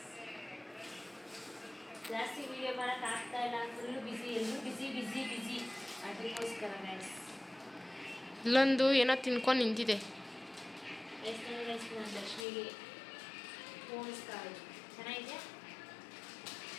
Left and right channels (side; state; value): right; drops out; at 12.5 s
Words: ಜಾಸ್ತಿ ವಿಡಿಯೋ ಮಾಡೋಕೆ ಆಗ್ತಾ ಇಲ್ಲ, ಫುಲ್ಲು ಬಿಸಿ, ಎಲ್ಲರೂ ಬಿಸಿ ಬಿಸಿ ಬಿಸಿ. ಅದಕ್ಕೋಸ್ಕರ ಗೈಸ್ ಇಲ್ಲೊಂದು ಏನೋ ತಿನ್ಕೊಂಡು ನಿಂತಿದೆ. ಎಷ್ಟು ನಾನು ಲಕ್ಷ್ಮಿಗೆ ಪೋಣಿಸ್ತಾ ಇದ್ದೀನಿ. ಚೆನ್ನಾಗಿದೆ.